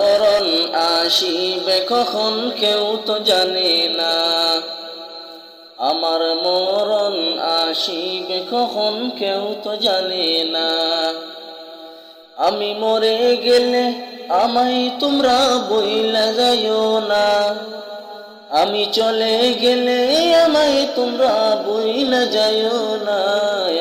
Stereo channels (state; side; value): identical; both; correlation 1.00